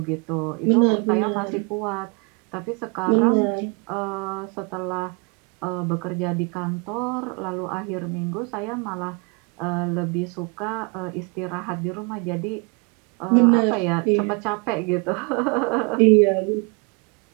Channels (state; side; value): quieter; left; 32.8 dB